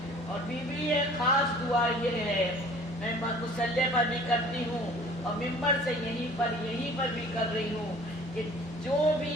اور بی بی ایک خاص دعا یہ ہے، میں مصلی پر بھی کرتی ہوں اور ممبر سے یہیں پر بھی کر رہی ہوں، کہ جو بھی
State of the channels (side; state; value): both; normal; correlation 0.49